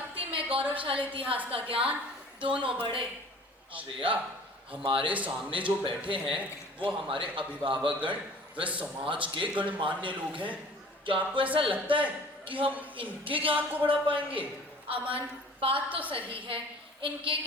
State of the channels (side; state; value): both; normal; correlation 0.47